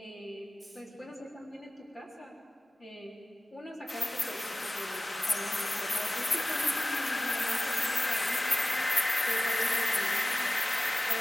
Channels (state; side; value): normal; both; correlation 0.96